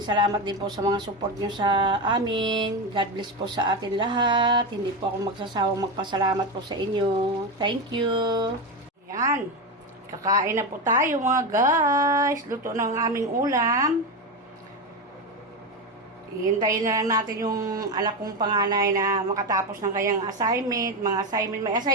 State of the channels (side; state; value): both; normal; correlation 0.15